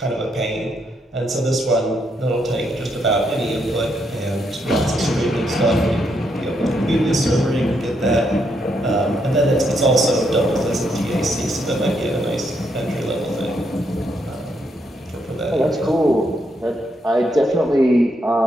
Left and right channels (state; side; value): normal; both; correlation 0.77